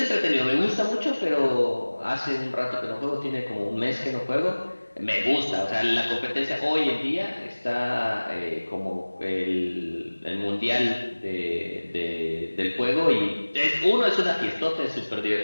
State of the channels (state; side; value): inverted; both; correlation -1.00